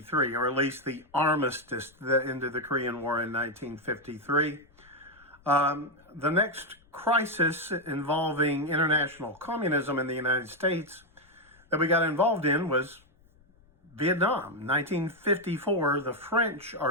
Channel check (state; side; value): noise; left; rumble, 30 dB below the sound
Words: or at least the armistice that ended the Korean War in 1953, the next crisis involving international communism in the United States that we got involved in was Vietnam. 1954, the French are